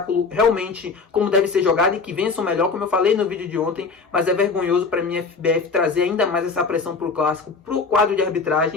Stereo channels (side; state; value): right; quieter; 4.6 dB